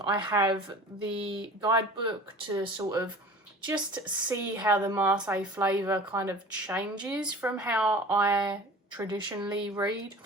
have the guidebook to sort of just see how the Marseille flavour kind of changes from how I traditionally read.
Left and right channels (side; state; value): both; normal; correlation 0.41